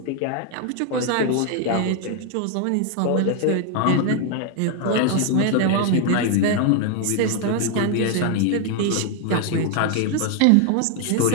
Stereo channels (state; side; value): different; both; correlation 0.00